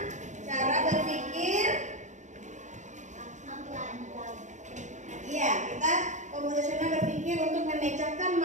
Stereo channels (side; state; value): left; late; 0.35 ms